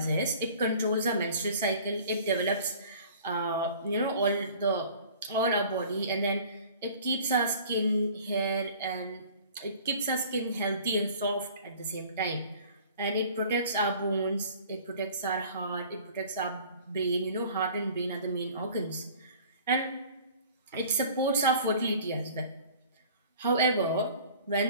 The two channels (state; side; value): inverted; both; correlation -0.48